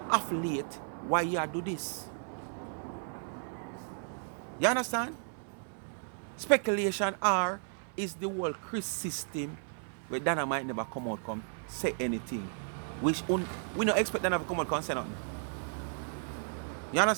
off late why you do this. You understand? Speculation or is the whole Chris system where Dana might never come out come say anything. We don't expect Dana to come out and say nothing. You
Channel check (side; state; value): left; silent; 55 dB below the other